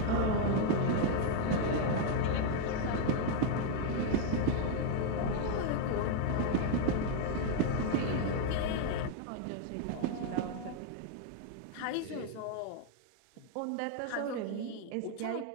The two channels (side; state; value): both; different; correlation 0.00